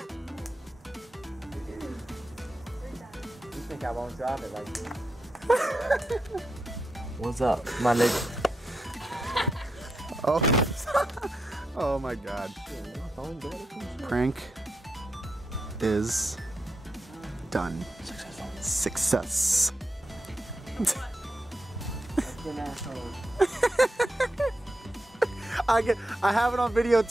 You think I won't drop it like this? What's up, my nigga? Oh. Oh my god. Prank is done. Success. I have it on video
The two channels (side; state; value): both; normal; correlation 0.85